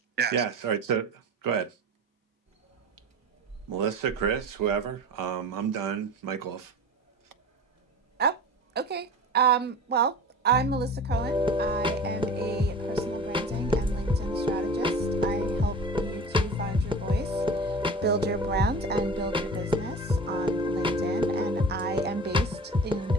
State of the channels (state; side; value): normal; both; correlation 0.36